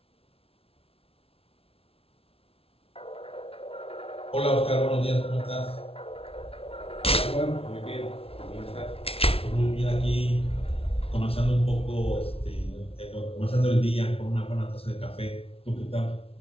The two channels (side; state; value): right; late; 0.27 ms